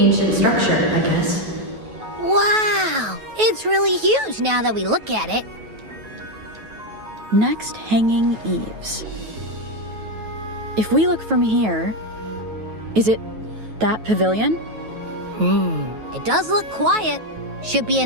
structure, I guess. Wow! It's really huge now that we look at it. Next, hanging eaves. If we look from here, is it that pavilion? It does look quiet. Should be a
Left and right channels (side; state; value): left; late; 9.2 ms